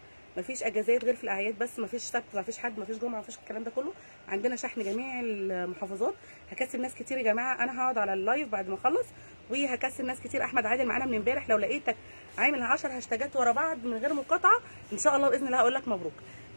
مفيش اجازات غير في الاعياد بس، مفيش سبت، مفيش حد، مفيش جمعه، مفيش الكلام ده كله. عندنا شحن جميع المحافظات. هكسب ناس كتير يا جماعه، انا هقعد على اللايف بعد ما اخلص وهكسب ناس كتير. احمد عادل معانا من امبارح، لو لقيتك عامل 10 هاشتاجات ورا بعض من غير مقاطعه ان شاء الله باذن الله هقول لك مبروك.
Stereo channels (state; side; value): inverted; both; correlation -1.00